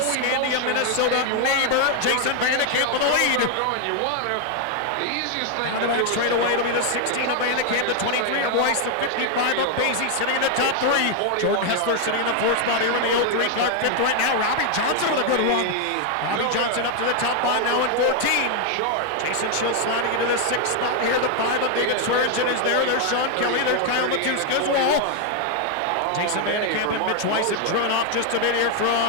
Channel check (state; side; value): different; both; correlation 0.00